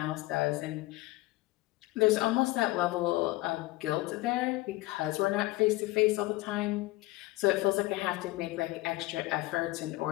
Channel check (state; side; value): quieter; right; 19.5 dB